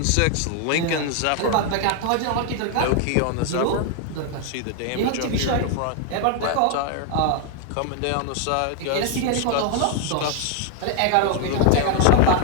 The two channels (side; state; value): both; different; correlation 0.00